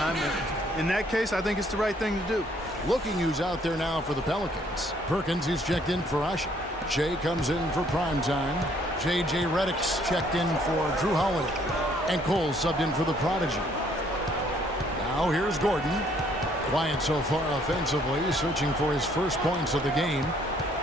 And in that case, I think it's the right thing to do. Looking who's out there now for the Pelicans. Perkins, who's checked in for Ashik. Jay comes in for prime time. J.J. Redick's checked in for Drew Holiday. And Cole subbed in for the prodigy. Now here's Gordon. Quiet so far offensively, searching for his first points of the game.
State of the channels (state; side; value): normal; both; correlation 0.64